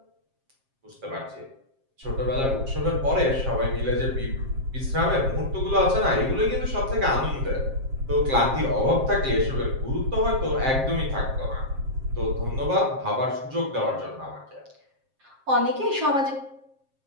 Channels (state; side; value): late; left; 7.5 ms